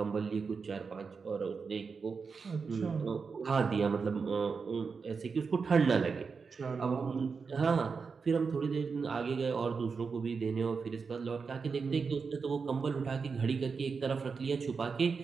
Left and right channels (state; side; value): quieter; left; 5.2 dB